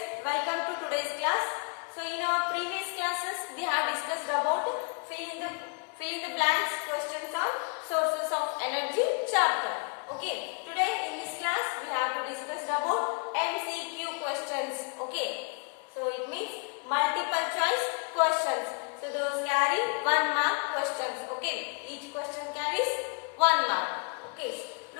welcome to today's class. So in our previous classes we have discussed about fill in the blanks questions on sources of energy chapter. Okay, today in this class we have to discuss about MCQ questions. Okay, so it means multiple choice questions. So those carry 1 mark questions. Okay, each question carries 1 mark. Okay,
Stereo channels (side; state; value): right; quieter; 37.4 dB